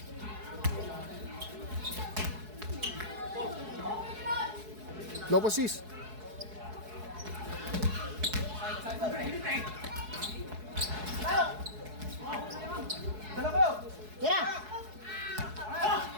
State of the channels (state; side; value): late; left; 4.7 ms